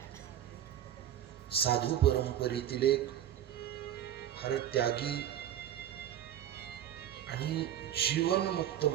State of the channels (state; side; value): quieter; left; 10.8 dB